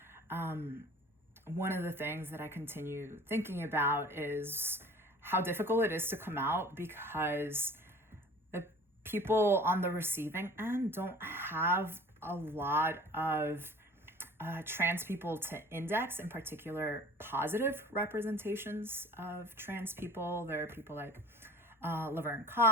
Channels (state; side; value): normal; both; correlation 0.45